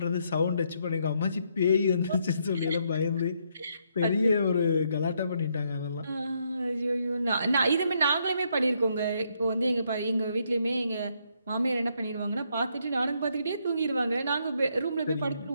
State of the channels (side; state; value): both; inverted; correlation -0.74